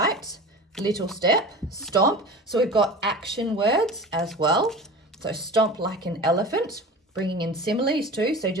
little step, stomp. So we've got action words as well. So stomp like an elephant, bringing in similes too. So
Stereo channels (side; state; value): both; normal; correlation 0.35